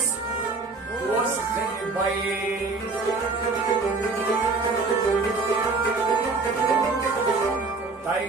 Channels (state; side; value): quieter; left; 3.9 dB